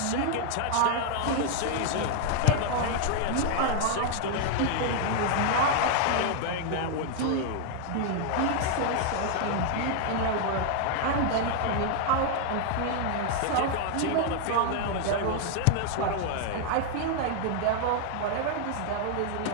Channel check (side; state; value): both; different; correlation 0.00